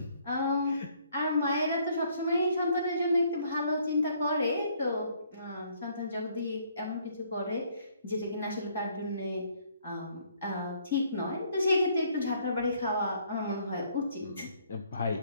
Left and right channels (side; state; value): both; inverted; correlation -0.64